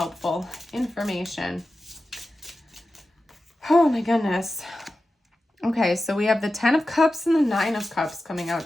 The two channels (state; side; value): normal; both; correlation 0.93